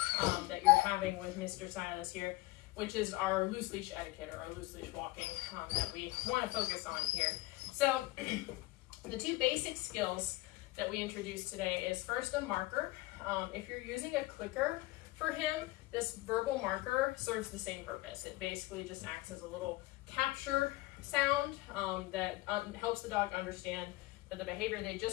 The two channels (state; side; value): quieter; right; 19.7 dB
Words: that you're having with Mr. Silas here, which is our loose leash etiquette, or our loose leash walking that we want to focus on here. So the 2 basic skills that we introduced today is first a marker. If you're using a clicker for him, this verbal marker serves the same purpose. It basically just acts as a little capture sound that helps the dog understand that the behavior they